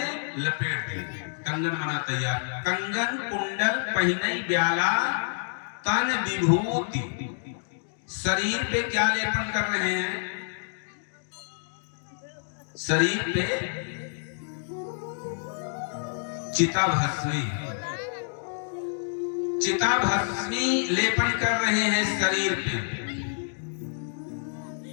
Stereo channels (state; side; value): silent; right; digital silence